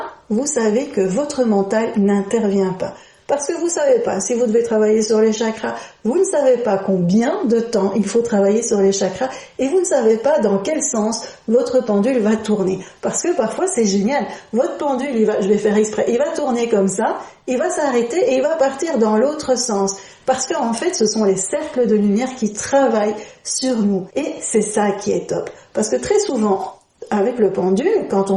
vous savez que votre mental n'intervient pas. Parce que vous ne savez pas si vous devez travailler sur les chakras, vous ne savez pas combien de temps il faut travailler sur les chakras et vous ne savez pas dans quel sens votre pendule va tourner. Parce que parfois c'est génial, votre pendule, je vais faire exprès, il va tourner comme ça, il va s'arrêter et il va partir dans l'autre sens. Parce qu'en fait, ce sont les cercles de lumière qui travaillent sur nous. Et c'est ça qui est top. Parce que très souvent, avec le pendule, quand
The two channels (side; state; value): both; identical; correlation 1.00